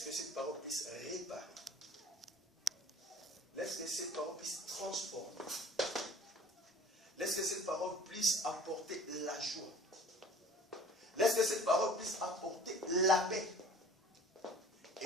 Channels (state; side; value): normal; both; correlation 0.47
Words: que cette parole puisse réparer. Laisse que cette parole puisse transformer. Laisse que cette parole puisse apporter la joie. Laisse que cette parole puisse apporter la paix.